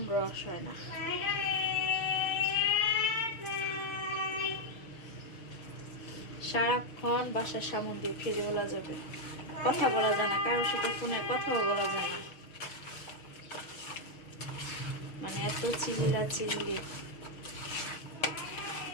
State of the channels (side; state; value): right; late; 6.5 ms